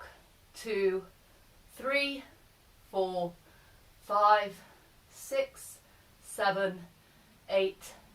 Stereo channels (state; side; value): identical; both; correlation 1.00